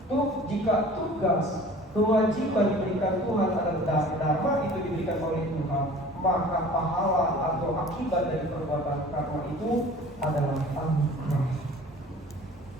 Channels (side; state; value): both; normal; correlation 0.45